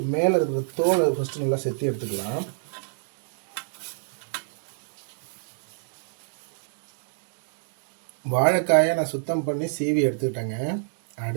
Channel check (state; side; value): silent; left; 59 dB below the other